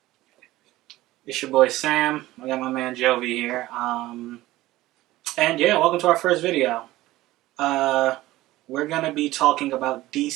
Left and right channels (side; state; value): left; quieter; 17.0 dB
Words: It's your boy Sam. I got my man Jovi here. And yeah, welcome to our first video. Uh, we're gonna be talking about